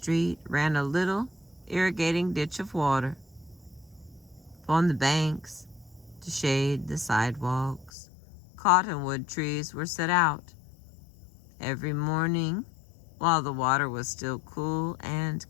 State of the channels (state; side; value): drops out; right; at 7.9 s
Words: ran a little irrigating ditch of water. Upon the banks, to shade the sidewalks, cottonwood trees were set out. Every morning, while the water was still cool and